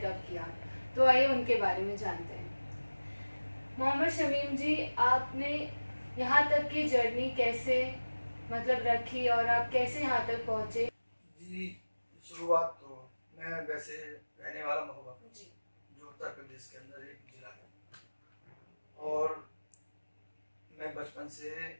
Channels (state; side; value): inverted; both; correlation -1.00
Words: किया। तो आइए उनके बारे में जानते हैं। मोहम्मद शमीम जी, आपने यहाँ तक की जर्नी कैसे रखी और आप कैसे यहाँ तक पहुँचे? जी, शुरुआत तो मैं वैसे रहने वाला महोबा जो उत्तर प्रदेश के अंदर एक जिला है, और मैं बचपन से